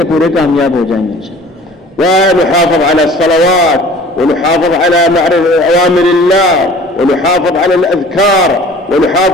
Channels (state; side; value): normal; both; correlation 0.47